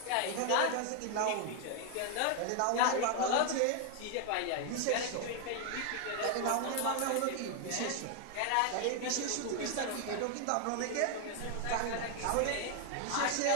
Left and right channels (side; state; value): both; different; correlation 0.00